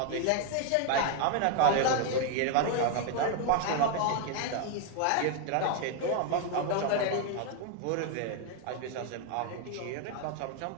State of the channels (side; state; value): both; different; correlation 0.01